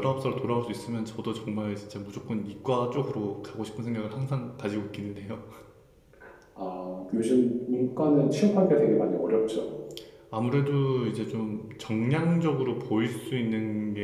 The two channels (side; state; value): both; identical; correlation 1.00